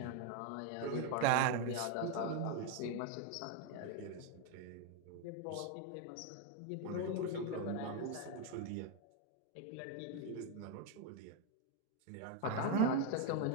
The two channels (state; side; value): different; both; correlation 0.01